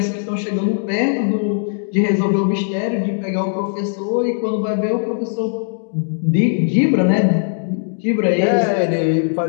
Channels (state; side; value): silent; right; digital silence